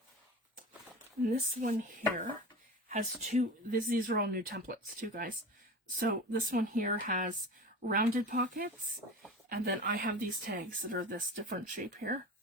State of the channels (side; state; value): both; normal; correlation 0.32